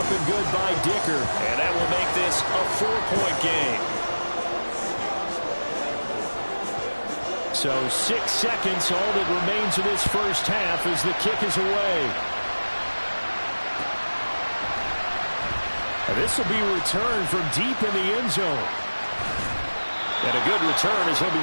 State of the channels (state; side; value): inverted; both; correlation -1.00